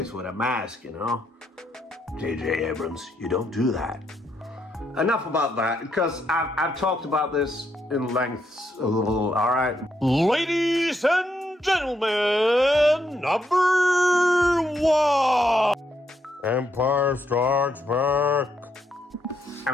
with a mask, you know. J.J. Abrams, you don't do that. Enough about that, because I've talked about this in lengths a little, alright? Ladies and gentlemen, number 1! Empire Strikes Back. I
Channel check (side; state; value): both; normal; correlation 0.78